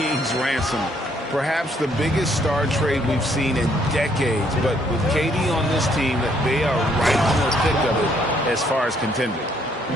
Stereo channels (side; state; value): both; normal; correlation 0.68